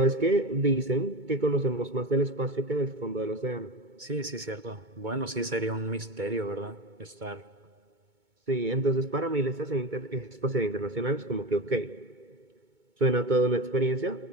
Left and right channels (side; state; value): left; late; 2.2 ms